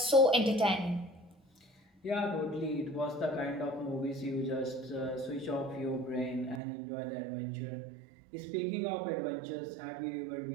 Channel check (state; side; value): drops out; left; at 6.6 s